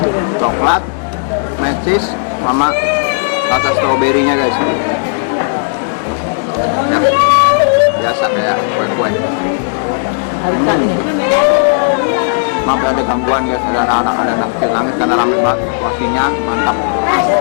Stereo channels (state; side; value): silent; right; digital silence